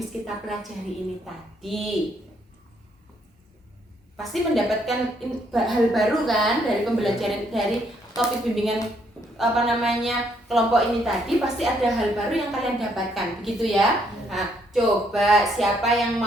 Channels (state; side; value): normal; both; correlation 0.70